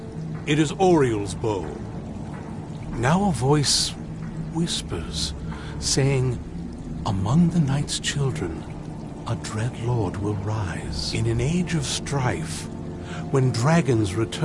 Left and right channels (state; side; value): identical; both; correlation 1.00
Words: It is Oriel's bow. Now a voice whispers, saying, "Among the night's children, a dread lord will rise. In an age of strife, when dragons